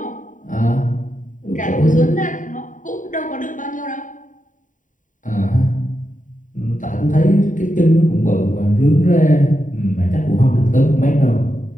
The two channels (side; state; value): right; late; 0.38 ms